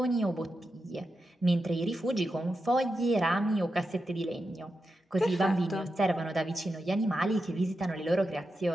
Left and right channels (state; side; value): normal; both; correlation 0.88